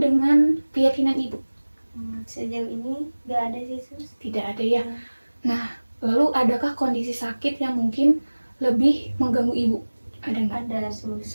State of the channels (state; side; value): inverted; both; correlation -1.00